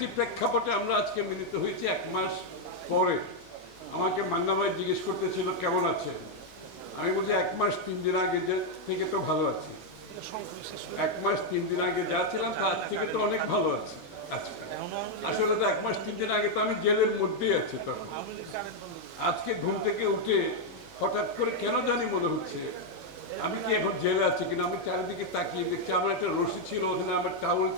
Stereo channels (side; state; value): both; normal; correlation 0.00